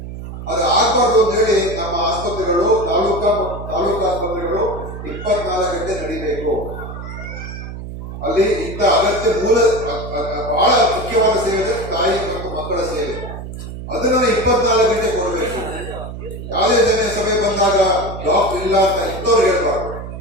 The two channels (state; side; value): noise; right; hum, 9 dB below the sound